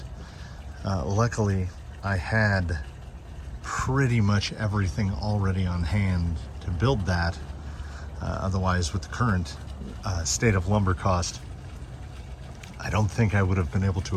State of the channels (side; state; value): both; identical; correlation 1.00